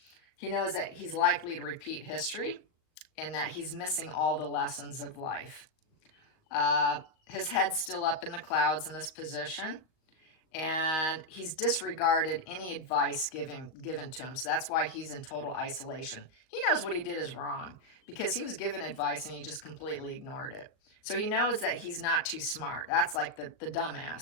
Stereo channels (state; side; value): late; right; 38 ms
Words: He knows that he's likely to repeat history and that he's missing all the lessons of life. His head's still up in the clouds in this position, and he's disregarded any advice given to him. So that's why he's in total isolation. He knows what he did is wrong because he was given advice and he just completely ignored it. So he knows that he's not too smart. That's like the